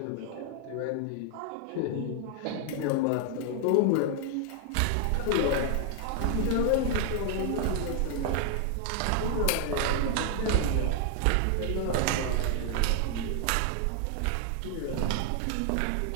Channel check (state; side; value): different; both; correlation 0.00